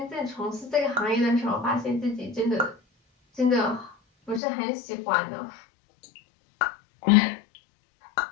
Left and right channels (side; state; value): right; drops out; at 4.4 s